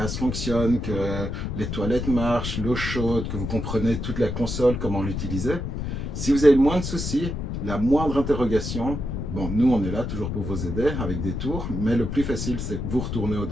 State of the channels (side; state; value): left; noise; rumble, 4 dB below the sound